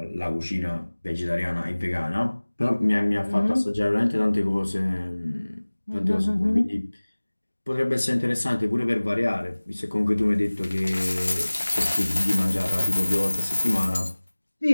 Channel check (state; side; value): inverted; both; correlation -1.00